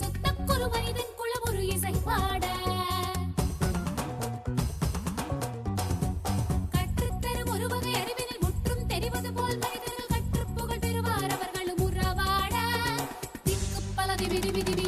சுத்தக்கொரு மனிதன் குளம் ஒரு இசை பாட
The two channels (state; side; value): identical; both; correlation 1.00